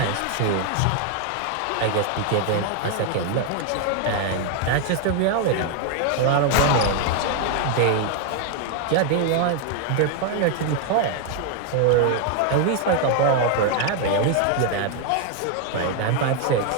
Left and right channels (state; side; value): different; both; correlation 0.00